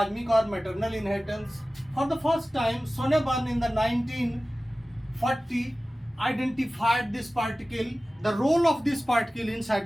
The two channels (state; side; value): normal; both; correlation 0.97